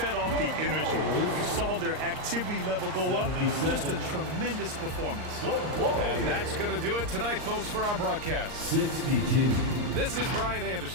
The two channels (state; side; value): late; left; 39 ms